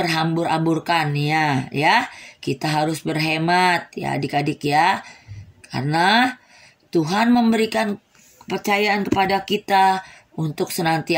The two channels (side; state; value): both; identical; correlation 1.00